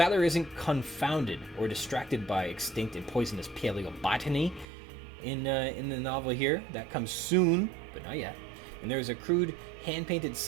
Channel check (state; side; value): drops out; left; at 4.7 s